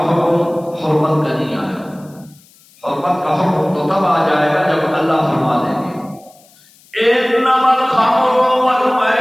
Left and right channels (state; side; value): noise; left; hiss, 29 dB below the sound